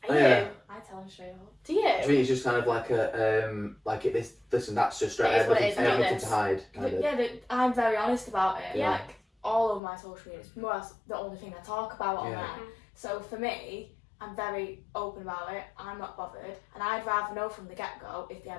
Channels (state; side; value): drops out; right; at 9.8 s